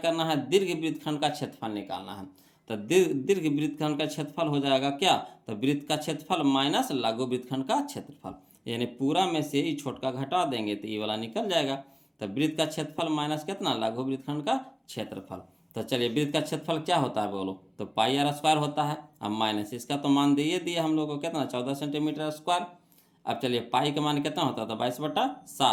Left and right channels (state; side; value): identical; both; correlation 1.00